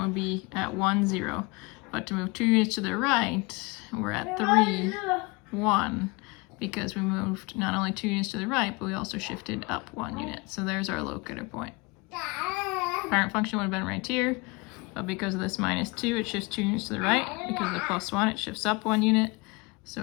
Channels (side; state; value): right; quieter; 26.0 dB